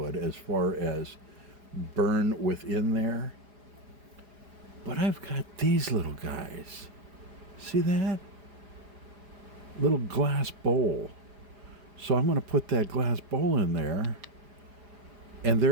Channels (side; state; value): left; late; 4.9 ms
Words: as far as burn within there. But I've got these little guys. See that? Little glass bowl. So I'm going to put that glass bowl in there, and